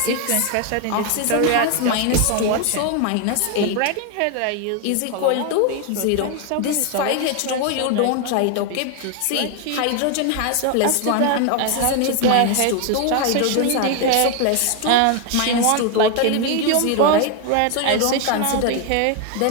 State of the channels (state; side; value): different; both; correlation 0.01